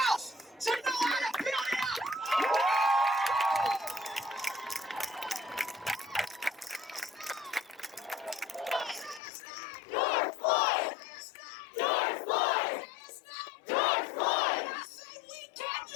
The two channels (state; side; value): drops out; right; at 9.2 s